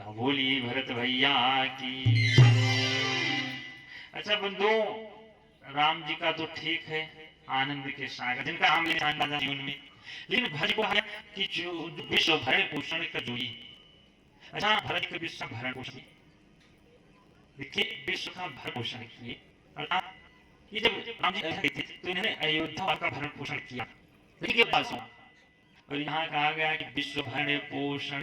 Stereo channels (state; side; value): identical; both; correlation 1.00